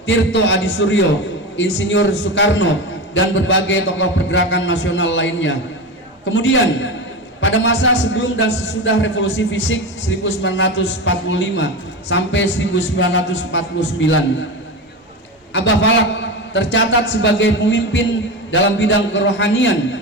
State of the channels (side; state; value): both; normal; correlation 0.22